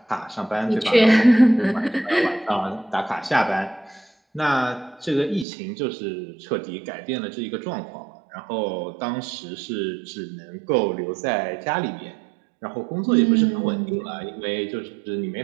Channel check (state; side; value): drops out; left; at 5.5 s